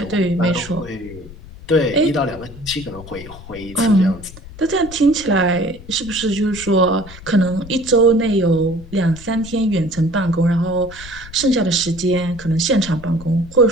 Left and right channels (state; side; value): noise; left; rumble, 17 dB below the sound